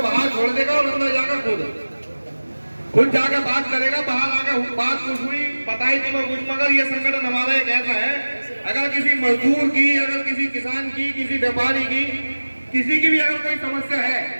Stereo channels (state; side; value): inverted; both; correlation -1.00